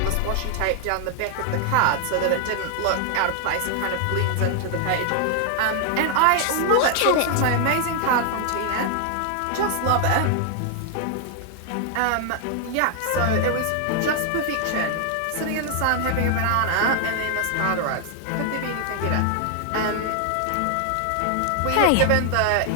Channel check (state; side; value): different; both; correlation 0.00